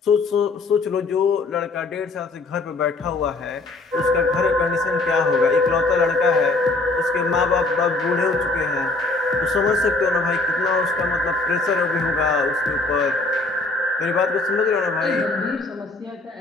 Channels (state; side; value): quieter; right; 3.3 dB